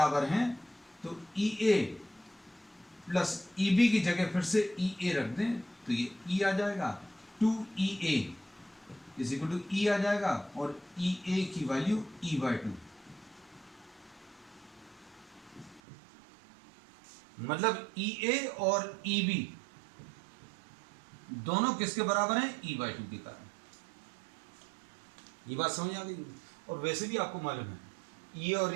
हैं तो ई ए प्लस ई बी की जगह फिर से ई ए रख दें तो ये ई आ जाएगा, 2EA इज इक्वल टू ई आ जाएगा, और ई ए की वैल्यू E/2। मतलब ई ए और ई बी दोनों किसके बराबर हैं? E/2 के कारण। ये बात समझ आ गई। और वैसे भी आपको मालूम है ई ए और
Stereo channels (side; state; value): left; drops out; at 15.8 s